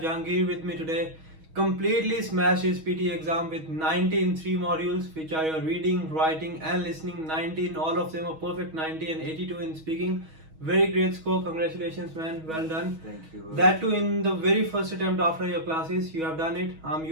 with me today. Completely smashed his PTE exam with 90 in 3 modules, which are your reading, writing and listening. 19, all of them are perfect 90 and 82 in speaking. Very great score, congratulations man, well done. Thank you. That too in the very first attempt after your classes, you have done it.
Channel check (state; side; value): late; left; 6.3 ms